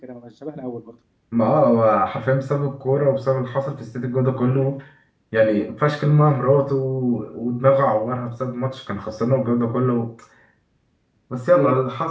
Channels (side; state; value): both; identical; correlation 1.00